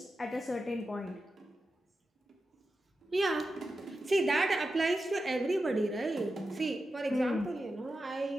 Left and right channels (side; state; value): both; normal; correlation 0.91